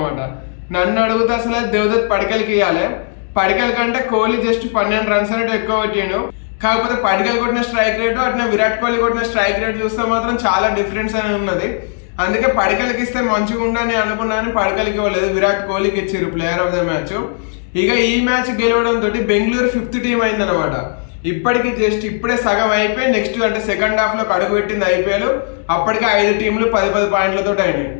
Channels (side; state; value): right; silent; 58 dB below the other